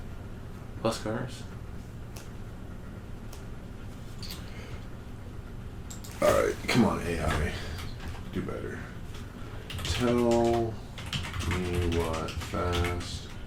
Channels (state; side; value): identical; both; correlation 1.00